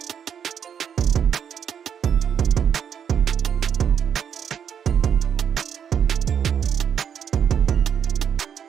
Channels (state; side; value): quieter; left; 8.1 dB